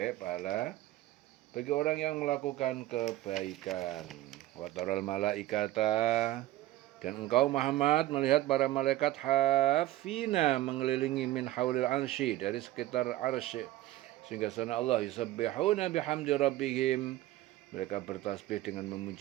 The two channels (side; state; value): left; quieter; 15.5 dB